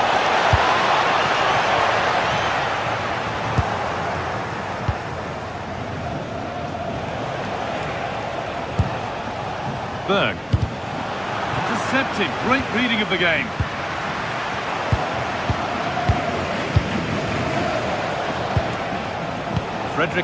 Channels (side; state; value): both; identical; correlation 1.00